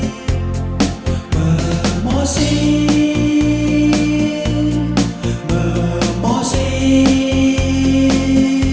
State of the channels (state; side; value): identical; both; correlation 1.00